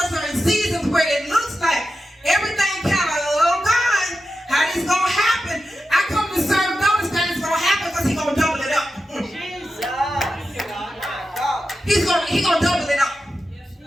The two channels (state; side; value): normal; both; correlation 0.91